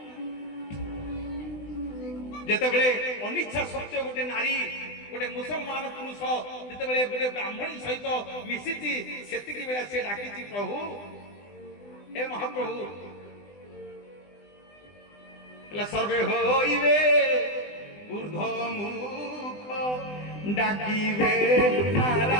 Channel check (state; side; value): late; right; 20 ms